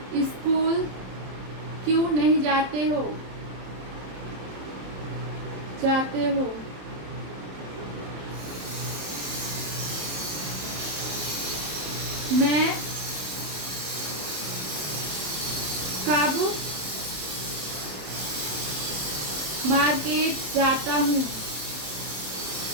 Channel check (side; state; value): left; late; 27 ms